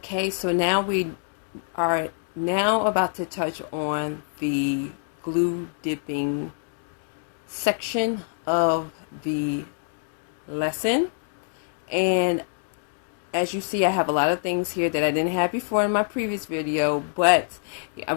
so now we are now about to touch on the glue dipping section of the lesson. And as you see, I have a lot of things here that I didn't have before in my previous video, but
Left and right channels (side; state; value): right; silent; digital silence